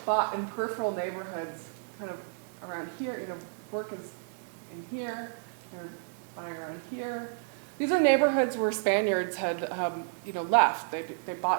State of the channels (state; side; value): silent; left; digital silence